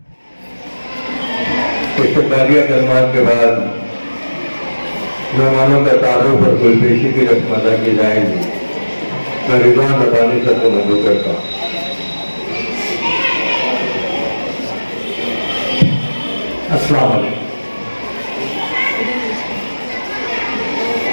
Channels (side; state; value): both; inverted; correlation -1.00